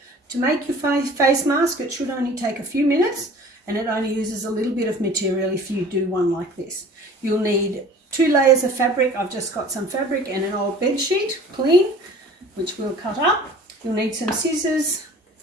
To make your face mask, it should only take a few minutes, and it only uses a little bit of material if you do one like this. You'll need 2 layers of fabric. I've just got some fabric and an old bed sheet, clean, which we'll cut up. You'll need some scissors,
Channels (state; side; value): normal; both; correlation 0.46